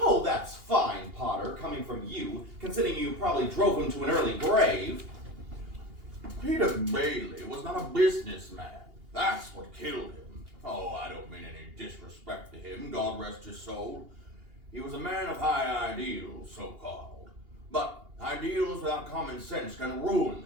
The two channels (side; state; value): left; late; 2.8 ms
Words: that's fine, Potter, coming from you, considering you probably drove him to an early grave. Peter Bailey was not a businessman. That's what killed him. Oh, I don't mean any disrespect to him, God rest his soul. He was a man of high ideals, so-called. But ideals without common sense can ruin